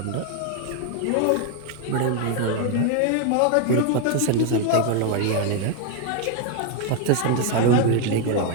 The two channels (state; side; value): different; both; correlation 0.01